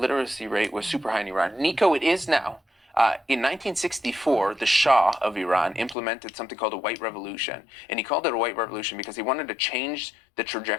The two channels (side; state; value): right; drops out; at 6.0 s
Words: rate was super high in Iran. Nico, it is now. In 1964, the Shah of Iran implemented something called a white revolution. And he called it a white revolution because he wanted to change the